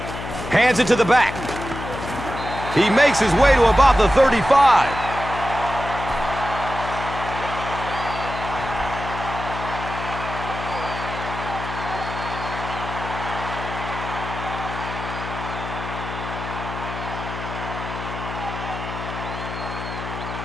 Hands it to the back. He makes his way to about the 35.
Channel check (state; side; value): noise; left; hum, 8 dB below the sound